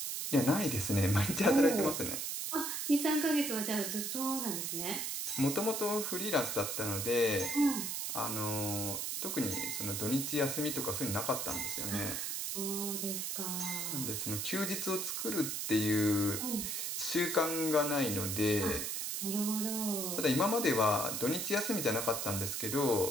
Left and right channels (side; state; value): right; noise; hiss, 2 dB below the sound